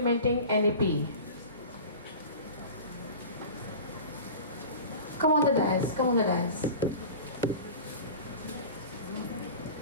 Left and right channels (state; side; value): inverted; both; correlation -0.35